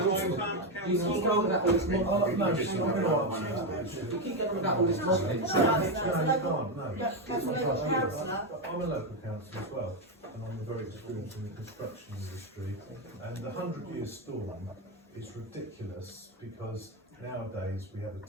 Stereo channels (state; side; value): normal; both; correlation 0.08